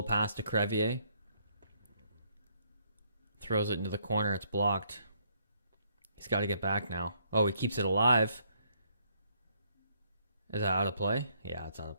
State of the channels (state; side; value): inverted; both; correlation -0.69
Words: pass to Crevier. Throws it into the corner. It's blocked. He's got to get back now. Oh, he keeps it alive. Is that out of play? Yeah, it's out of